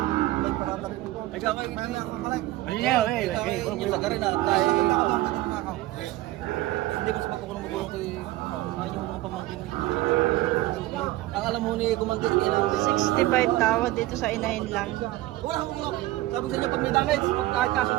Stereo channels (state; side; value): quieter; left; 17.2 dB